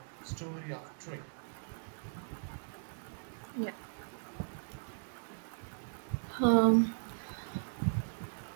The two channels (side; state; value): left; silent; digital silence